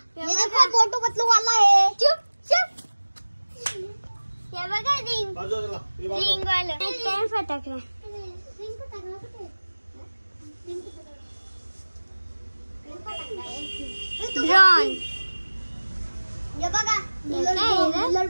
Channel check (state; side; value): inverted; both; correlation -1.00